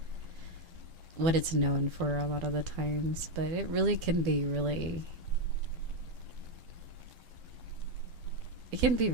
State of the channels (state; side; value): late; left; 12 ms